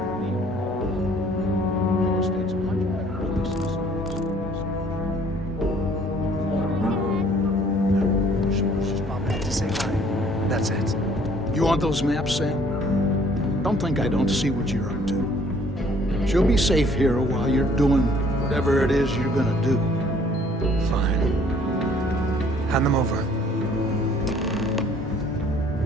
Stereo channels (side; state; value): both; normal; correlation 0.58